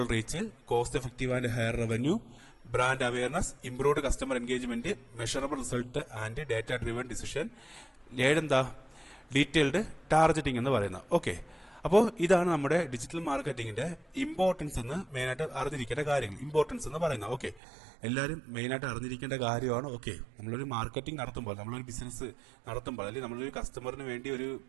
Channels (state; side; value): drops out; left; at 17.6 s